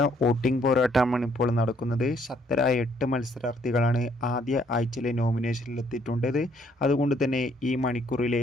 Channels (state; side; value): normal; both; correlation 0.66